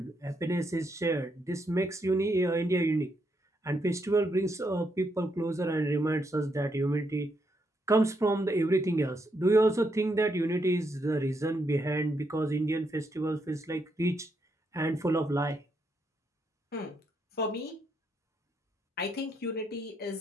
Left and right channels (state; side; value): normal; both; correlation 0.78